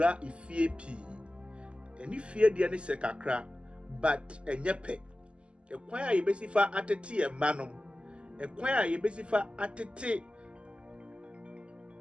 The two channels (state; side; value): late; left; 0.054 ms